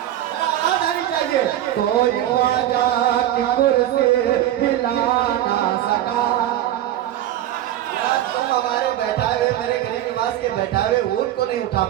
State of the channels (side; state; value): left; quieter; 12.7 dB